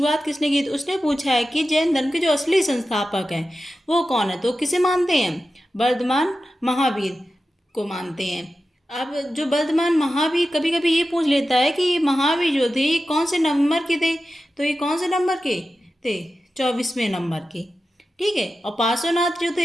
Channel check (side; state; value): both; normal; correlation 0.93